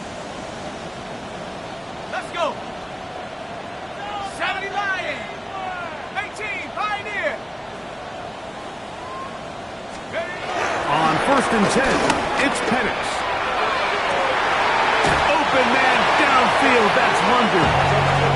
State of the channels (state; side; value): identical; both; correlation 1.00